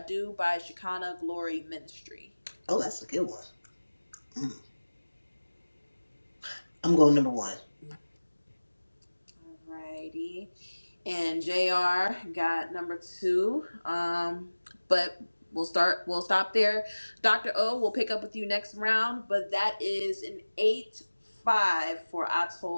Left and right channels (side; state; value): both; inverted; correlation -1.00